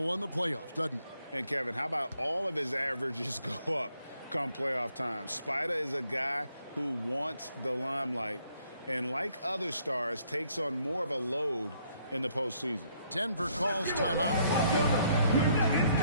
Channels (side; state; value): both; inverted; correlation -0.68